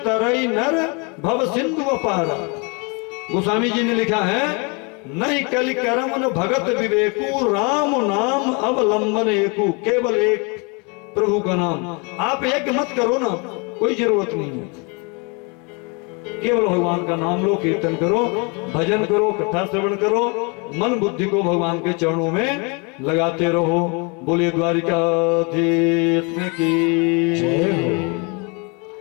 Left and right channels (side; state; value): right; quieter; 32.1 dB